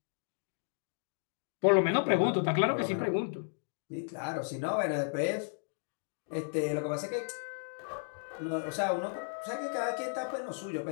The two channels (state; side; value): silent; right; digital silence